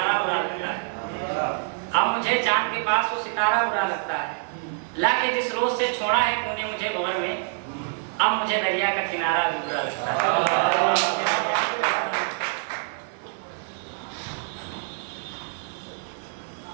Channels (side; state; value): left; silent; 61 dB below the other